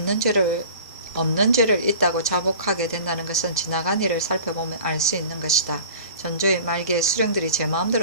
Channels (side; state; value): both; inverted; correlation -0.42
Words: 없는 죄를 있다고 자복하게 된다는 것은 지나간 일을 살펴보면 알 수 있는 것이다. 전조의 말기에 수령들이 제